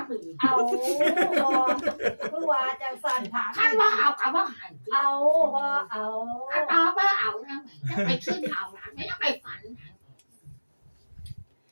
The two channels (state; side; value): inverted; both; correlation -1.00